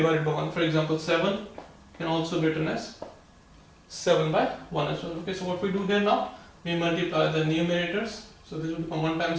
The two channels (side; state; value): both; identical; correlation 1.00